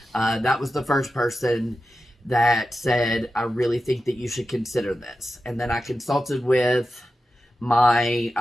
That was the first person that said, I really think that you should consider this. And then I consulted with my,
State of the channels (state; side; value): normal; both; correlation 0.91